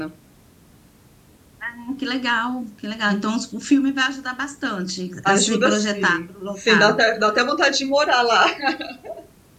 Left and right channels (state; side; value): identical; both; correlation 1.00